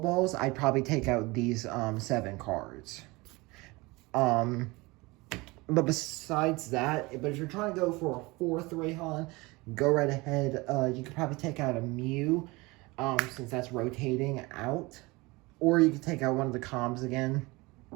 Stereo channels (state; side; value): quieter; left; 23.4 dB